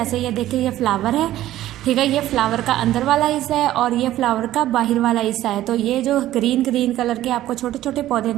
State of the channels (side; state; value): left; quieter; 14.0 dB